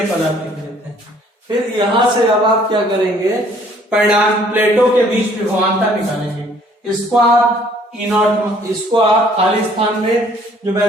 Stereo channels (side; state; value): both; normal; correlation 0.59